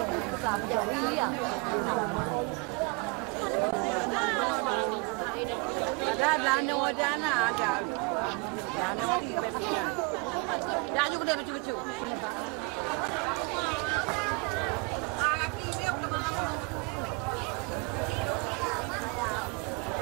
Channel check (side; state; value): left; quieter; 29.6 dB